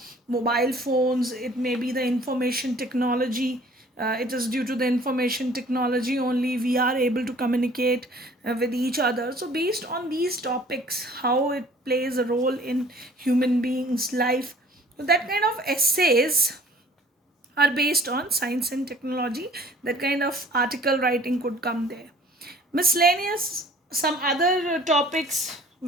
mobile phones, it may be the information technology. It is due to the information technology only we are able to communicate with each other. So based on these topics, how it plays a role in human beings life, so that kind of essays are based on science and technology. That kind of article writing could come there. Miscellaneous, some other topics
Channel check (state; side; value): normal; both; correlation 0.52